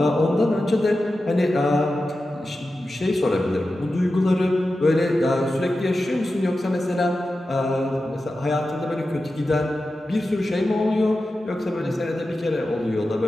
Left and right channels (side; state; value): both; normal; correlation 0.92